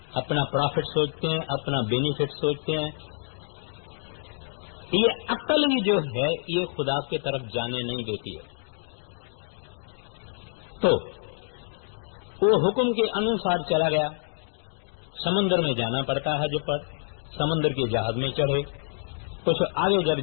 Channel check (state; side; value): silent; right; digital silence